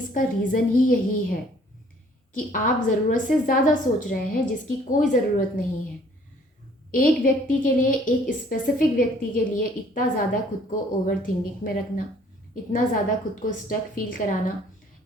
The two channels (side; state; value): both; normal; correlation 0.58